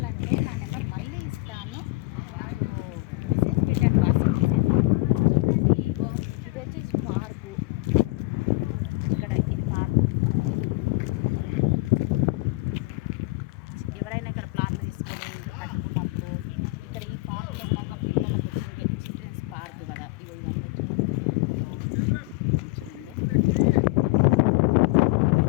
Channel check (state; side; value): quieter; right; 22.7 dB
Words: నా నెంబర్ మళ్ళీ ఇస్తాను, నాకు మెసేజ్ పెట్టండి, వాట్సాప్ మెసేజ్. చూడండి, ఇగో ఇది వచ్చేసి పార్కు. ఇక్కడ ఇది పార్కు. ఎవరైనా ఇక్కడ ప్లాట్లు తీసుకొని ఇల్లు కట్టుకున్నప్పుడు ఇక్కడ ఈ పార్కులో ఉన్న పిల్లలకు వచ్చిన చిల్డ్రన్స్ పార్క్ కదా, ఇగో ఇదంతా